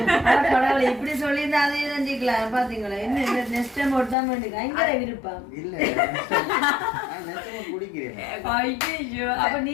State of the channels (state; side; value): drops out; right; at 4.2 s